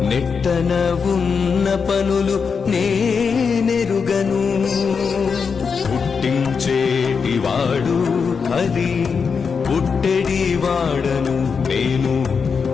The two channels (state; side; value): quieter; right; 5.7 dB